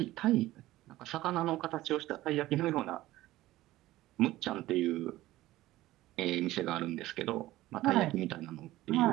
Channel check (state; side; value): quieter; left; 16.4 dB